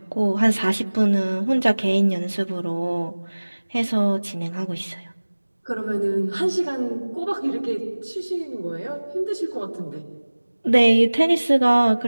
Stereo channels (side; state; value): both; inverted; correlation -1.00